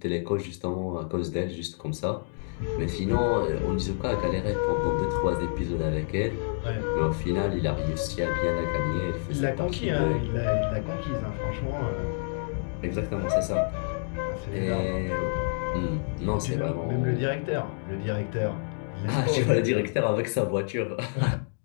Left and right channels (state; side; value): silent; right; digital silence